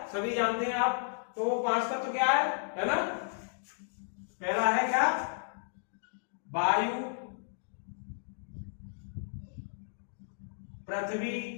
सभी जानते हैं आप। तो वो 5 तत्व क्या है ना। पहला है क्या, वायु, पृथ्वी,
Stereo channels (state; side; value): silent; right; digital silence